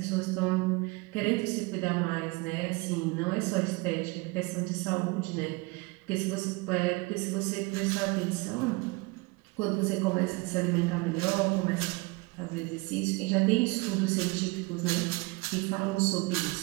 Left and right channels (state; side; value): quieter; left; 25.2 dB